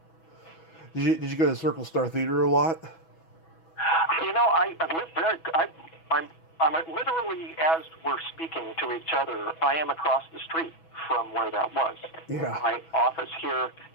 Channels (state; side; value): late; right; 6.1 ms